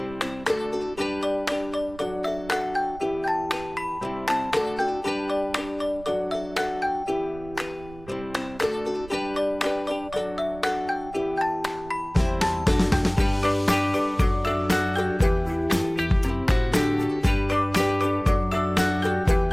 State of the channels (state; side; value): noise; right; rumble, 19 dB below the sound